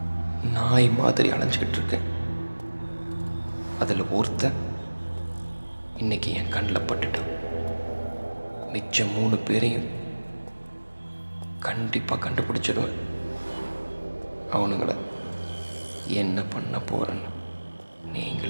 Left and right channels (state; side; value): inverted; both; correlation -1.00